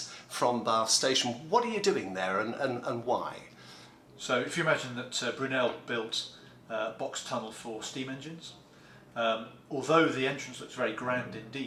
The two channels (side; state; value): both; identical; correlation 1.00